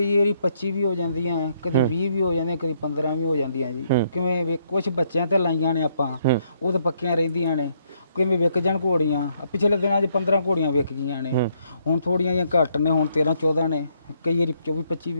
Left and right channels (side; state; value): both; inverted; correlation -0.72